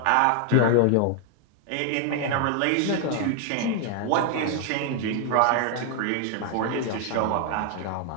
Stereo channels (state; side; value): different; both; correlation 0.00